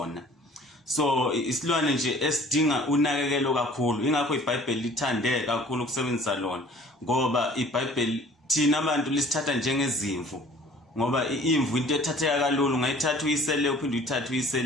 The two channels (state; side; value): normal; both; correlation 0.51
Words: So isilwane nje esidinga unakekelo kakhulu. Ingakho iBhayibheli lithande kakhulu ukusebenzisa lona, ngoba iBhayibheli thina abantu lisithatha njengezimvu, ngoba imvu into ethatheka kalulu, ungayithatha uyisele uphinde uyithathe